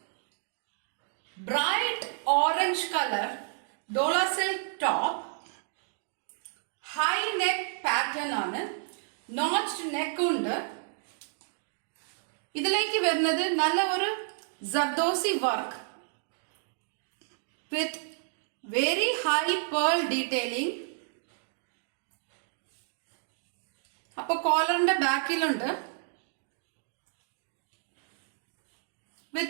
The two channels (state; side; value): silent; left; digital silence